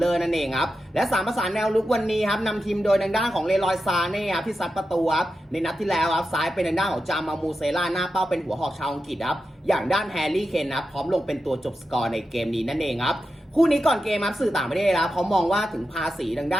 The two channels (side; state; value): both; normal; correlation 0.90